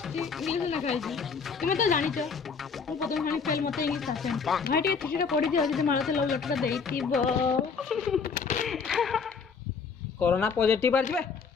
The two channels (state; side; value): quieter; right; 5.5 dB